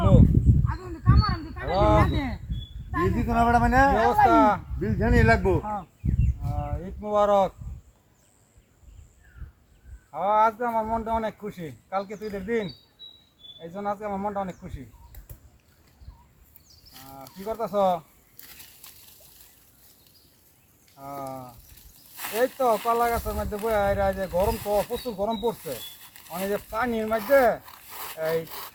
বিল দিত না বেটা মানে কি অবস্থা বিল জানি লাগবো ঈদ মুবারক আজকে আমার মনটা অনেক খুশি কালকে তো ঈদের দিন এই জন্য আজকে আমার মনটা অনেক খুশি কি করতেছ এই তো কলা গাছের মধ্যে বইয়া যে গরম তো প্রচুর গরম পড়ছে মানে যে পানির মধ্যে এই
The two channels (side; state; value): both; identical; correlation 1.00